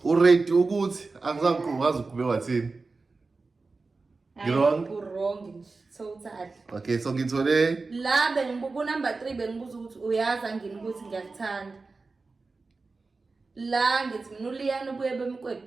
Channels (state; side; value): quieter; left; 3.9 dB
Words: uready ukuthi angizangiqhaza ukube wathini? Wrong? Wrong nje. Total. Okay, so ngithole La bengibuka number 3 bengibuza ukuthi uyazi angini ukuthi ngiyakuthanda. La ngithi mina uLiyana ubuye